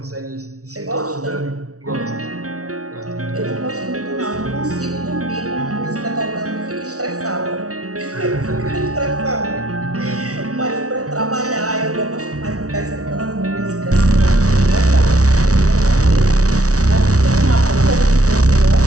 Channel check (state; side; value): late; left; 0.66 ms